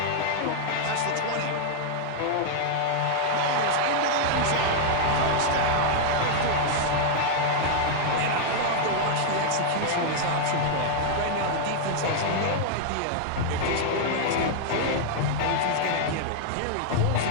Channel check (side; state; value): both; different; correlation -0.01